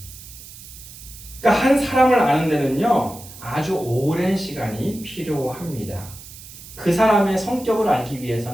그러니까 한 사람을 아는 데는요, 아주 오랜 시간이 필요합니다. 그 사람의 성격을 알기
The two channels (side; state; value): right; noise; hiss, 16 dB below the sound